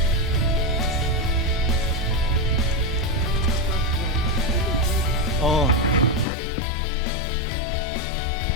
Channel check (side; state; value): right; drops out; at 6.2 s